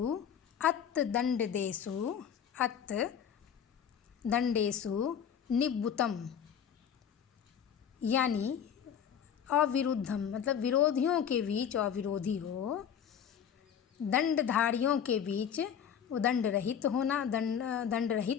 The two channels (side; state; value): right; quieter; 8.4 dB